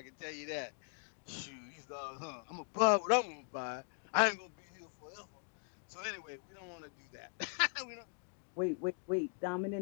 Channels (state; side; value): silent; right; 51 dB below the other